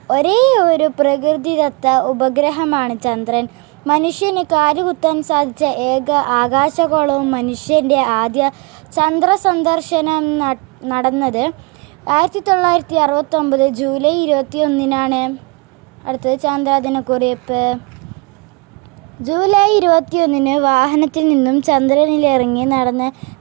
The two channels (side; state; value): left; quieter; 29.0 dB